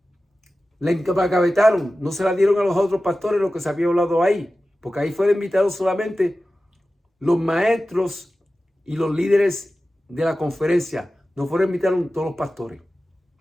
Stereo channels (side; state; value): both; normal; correlation 0.95